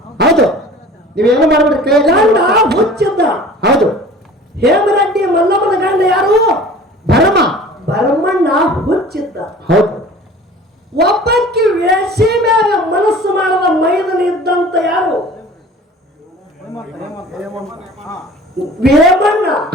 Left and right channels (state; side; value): normal; both; correlation 0.44